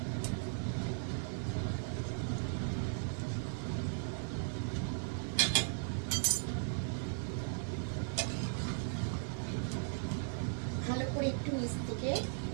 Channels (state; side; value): silent; left; digital silence